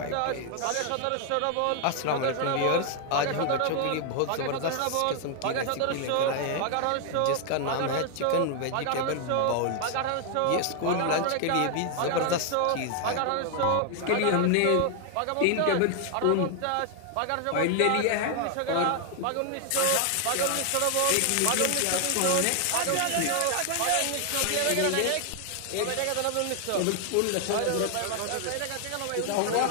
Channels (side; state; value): both; different; correlation 0.00